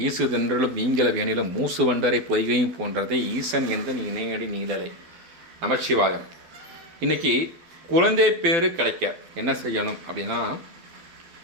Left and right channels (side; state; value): left; late; 12 ms